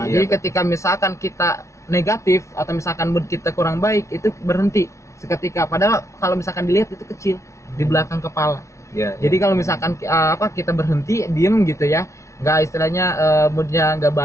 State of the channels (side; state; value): right; late; 0.14 ms